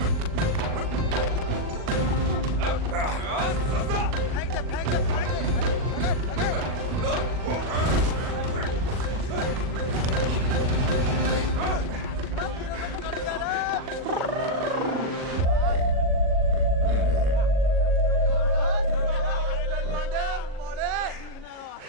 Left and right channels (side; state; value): left; late; 40 ms